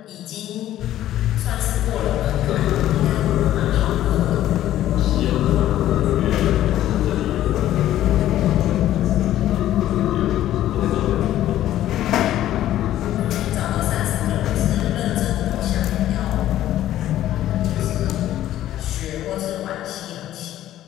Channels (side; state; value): right; quieter; 13.0 dB